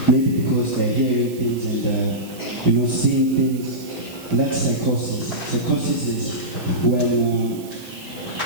maybe because they're hearing things and seeing things. And that's psychosis. Psychosis is when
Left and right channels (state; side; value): noise; right; hiss, 19 dB below the sound